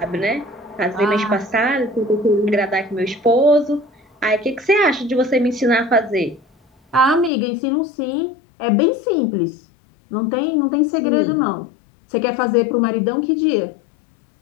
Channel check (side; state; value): right; drops out; at 7.3 s